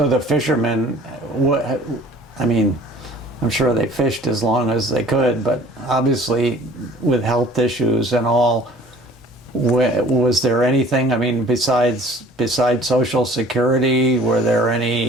the fishermen, I mean, I'm sure they fished as long as they could, but obviously with health issues and all, was there anything, I mean, besides Social Security, were there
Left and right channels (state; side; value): normal; both; correlation 0.50